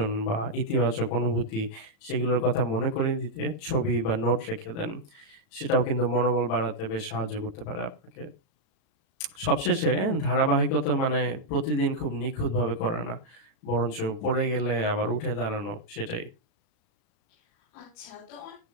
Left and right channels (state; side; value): late; right; 36 ms